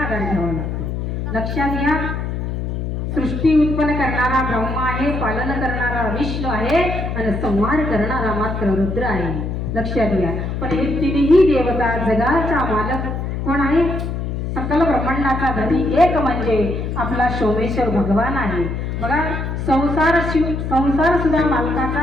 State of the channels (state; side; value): noise; left; hum, 3 dB below the sound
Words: घ्यावा लागतो. लक्षात घ्या, सृष्टी उत्पन्न करणारा ब्रह्मा आहे, पालन करणारा विष्णू आहे आणि संहार करणारा मात्र रुद्र आहे. लक्षात घ्या. पण हे तिन्ही देवता जगाचा मालक कोण आहे? सकल ब्रह्मांडाचा धनी एक म्हणजे आपला सोमेश्वर भगवान आहे. बघा, संसार सुद्धा